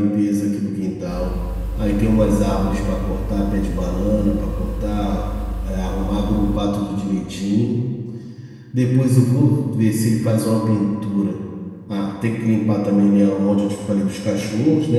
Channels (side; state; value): both; identical; correlation 1.00